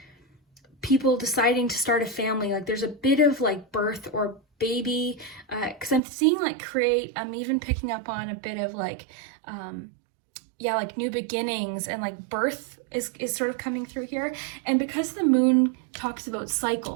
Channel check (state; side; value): drops out; left; at 6.0 s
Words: people deciding to start a family. Like there's a bit of like birth or baby, because I'm seeing like create. I'm even picking up on a bit of like, yeah, like new beginnings, and like birth is sort of coming through here. And because the moon talks about